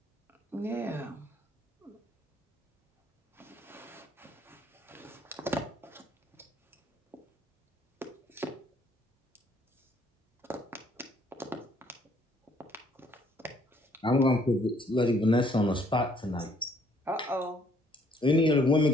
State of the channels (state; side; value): normal; both; correlation 0.65